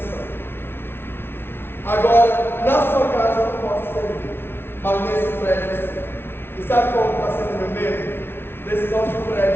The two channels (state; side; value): late; right; 0.11 ms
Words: Agora, na sua casa eu não posso servir, mas nesse prédio sim. E sabe qual está sendo o meu medo? Desse nosso